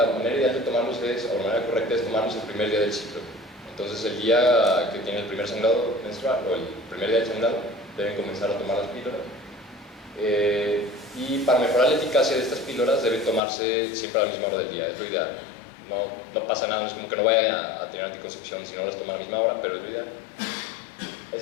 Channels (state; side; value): drops out; right; at 13.4 s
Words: manera ideal de tomarlos o la manera correcta es tomarlos el primer día del ciclo. Entonces, el día que tiene el primer sangrado menstrual o el primer día del sangrado, deben comenzar a tomar las píldoras. Y para mejorar la eficacia de estas píldoras, deben tomarse siempre a la misma hora del día, es lo ideal. No pasa nada, no es como que no vaya a tener anticoncepción si no las toma a la misma hora, pero es lo ideal.